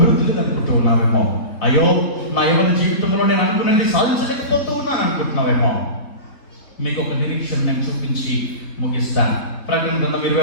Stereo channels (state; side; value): late; right; 3.9 ms